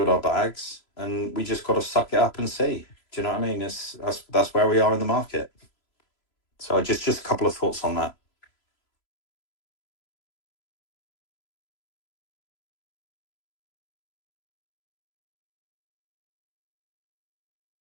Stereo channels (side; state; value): right; late; 3.0 ms